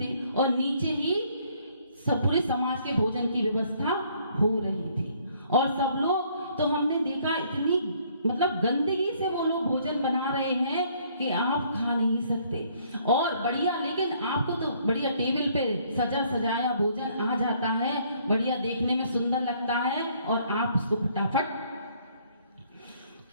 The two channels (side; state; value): both; inverted; correlation -0.64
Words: और नीचे ही सब पूरे समाज के भोजन की व्यवस्था हो रही थी। और सब लोग, तो हमने देखा इतनी मतलब गंदगी से वो लोग भोजन बना रहे हैं कि आप खा नहीं सकते। और बढ़िया, लेकिन आपको तो बढ़िया टेबल पे सजा सजाया भोजन आ जाता है, बढ़िया देखने में सुंदर लगता है, और आप उसको फटाफट